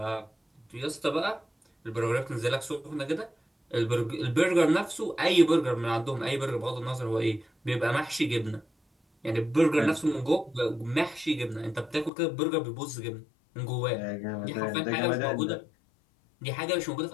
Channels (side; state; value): right; drops out; at 12.1 s